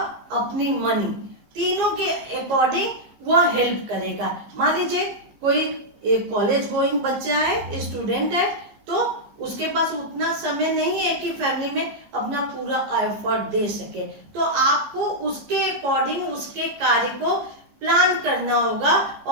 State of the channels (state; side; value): late; left; 15 ms